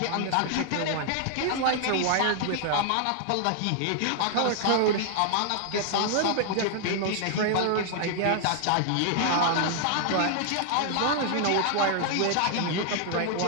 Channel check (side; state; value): both; different; correlation 0.00